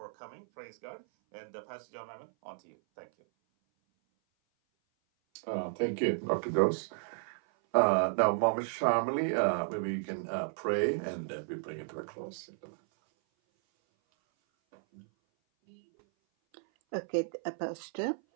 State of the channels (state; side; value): silent; left; 55 dB below the other